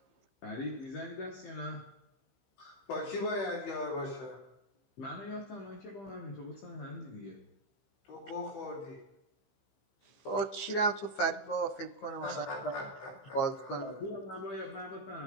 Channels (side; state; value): right; late; 15 ms